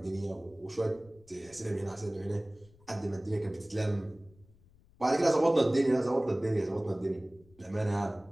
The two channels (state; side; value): noise; left; rumble, 27 dB below the sound